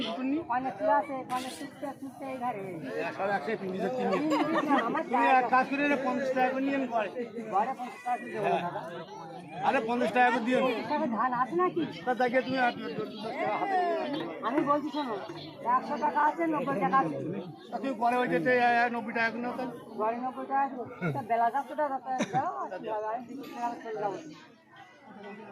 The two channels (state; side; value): identical; both; correlation 1.00